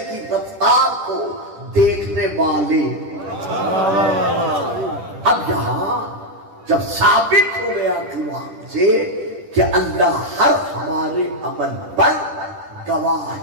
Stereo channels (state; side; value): late; left; 10 ms